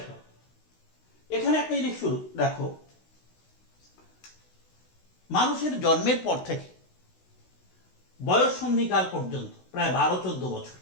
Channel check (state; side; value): late; right; 16 ms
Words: এখানে একটা জিনিস শুরু দেখো, মানুষের জন্মের পর থেকে বয়ঃসন্ধিকাল পর্যন্ত প্রায় 12-14 বছর,